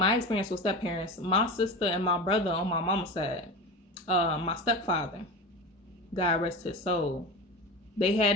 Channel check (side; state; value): both; normal; correlation 0.28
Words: experience with step parents, my sister and my brother on my mama's side, my stepfather, God rest his soul, they